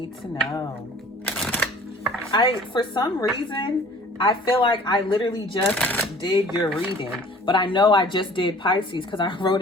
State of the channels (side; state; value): both; normal; correlation 0.50